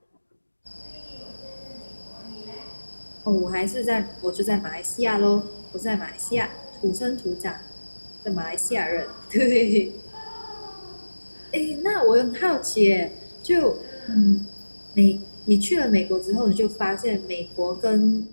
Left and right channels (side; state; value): both; inverted; correlation -1.00